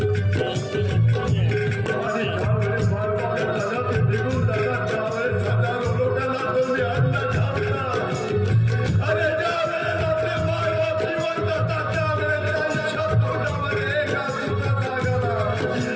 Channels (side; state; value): both; identical; correlation 1.00